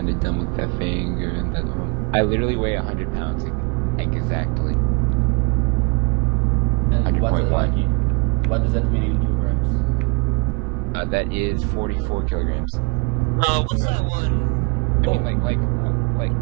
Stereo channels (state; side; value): quieter; left; 33.0 dB